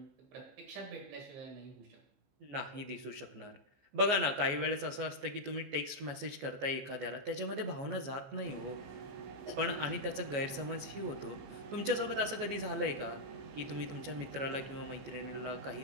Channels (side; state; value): left; late; 14 ms